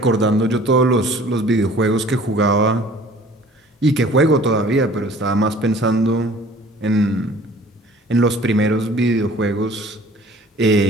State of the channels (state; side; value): normal; both; correlation 0.50